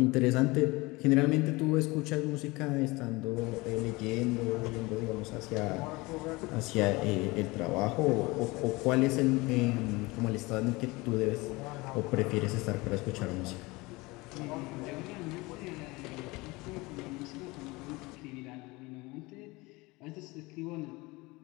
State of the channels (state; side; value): quieter; right; 23.1 dB